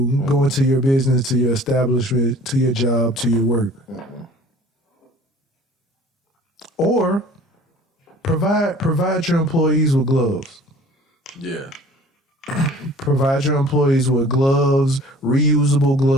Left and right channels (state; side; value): normal; both; correlation 0.48